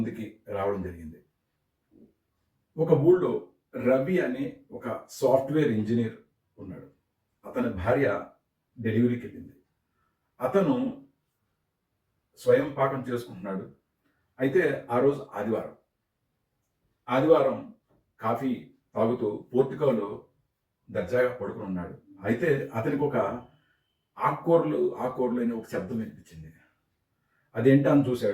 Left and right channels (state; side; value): identical; both; correlation 1.00